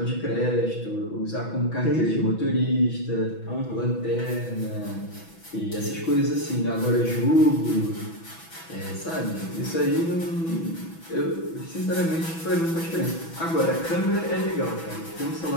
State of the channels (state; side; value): late; right; 6.1 ms